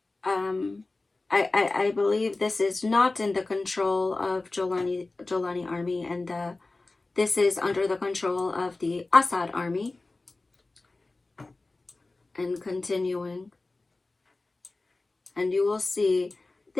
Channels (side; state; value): right; quieter; 3.3 dB